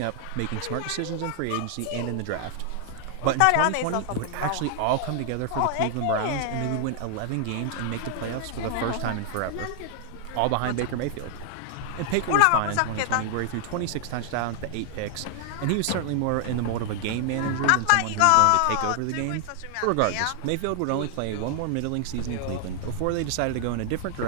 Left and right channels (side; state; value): both; different; correlation 0.00